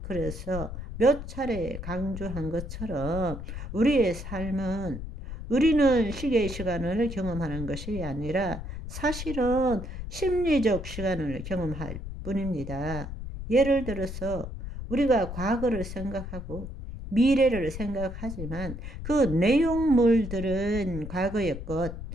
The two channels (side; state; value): left; noise; rumble, 8 dB below the sound